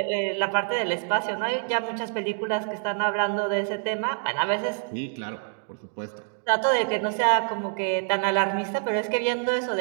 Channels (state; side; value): silent; left; digital silence